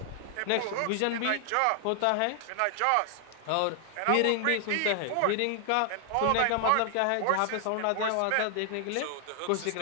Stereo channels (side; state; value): both; different; correlation 0.00